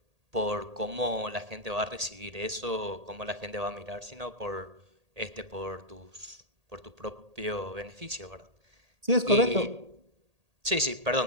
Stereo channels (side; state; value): left; late; 1.8 ms